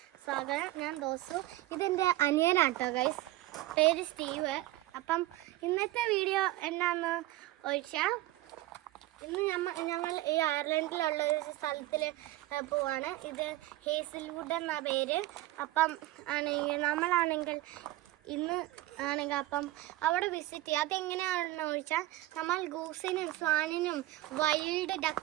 സ്വാഗതം. ഞാൻ ദോസു. ഇതെൻ്റെ അനിയനാട്ടോ ഗൈസ്, പേര് സ്റ്റീവ്. അപ്പം ഇന്നത്തെ വീഡിയോ എന്നാന്ന് ചോദിച്ചാൽ, ഇന്ന് ഞങ്ങൾ ഈ അയർലൻഡിലുള്ള ഒരു സ്ഥലത്തിൽ പോവാണ്. ഇത് ഹേസിൽവുഡ് എന്ന പേര്. അപ്പം നമ്മളാണെങ്കിൽ ഇന്ന് ആണെങ്കിൽ അപ്പം അവിടെ വിസിറ്റ് ചെയ്യുക. അതെങ്ങനെയാണെന്ന് ചോദിച്ചാൽ, നമ്മൾ ഗൂസിനും സ്വാനിനും വൈൽഡ്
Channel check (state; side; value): quieter; left; 16.7 dB